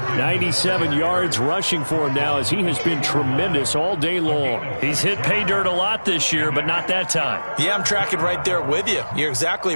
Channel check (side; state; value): both; inverted; correlation -1.00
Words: 97 yards rushing for him now as he has been tremendous all day long. He's hit pay dirt a lot this year, but not that time. Yeah, I'm tracking right there with you. You're